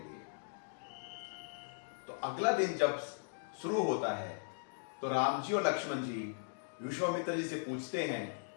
तो अगला दिन जब शुरू होता है तो राम जी और लक्ष्मण जी विश्वामित्र जी से पूछते हैं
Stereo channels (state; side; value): silent; right; digital silence